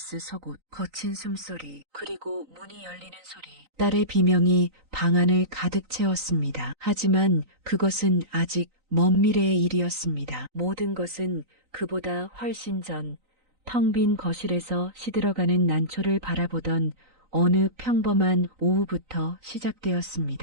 속옷, 거친 숨소리, 그리고 문이 열리는 소리. 딸의 비명이 방 안을 가득 채웠습니다. 하지만 그것은 아직 먼 미래의 일이었습니다. 모든 것은 그보다 훨씬 전, 텅 빈 거실에서 시들어가는 난초를 바라보던 어느 평범한 오후부터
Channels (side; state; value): left; late; 3.9 ms